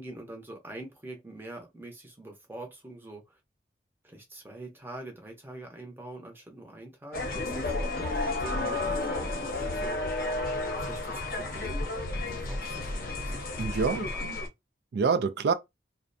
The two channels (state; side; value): normal; both; correlation 0.21